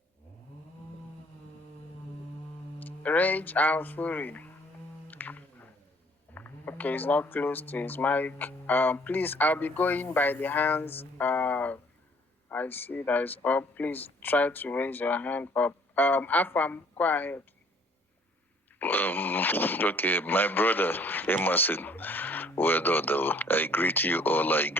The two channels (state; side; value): normal; both; correlation 0.59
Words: Rage and Fury. Okay, he's not close to his mic. Please, I'll be going by the hands. I see that is up. Please try to raise your hand up. Afam, go ahead. Okay, my brother Emerson, well done though. I greet you all. I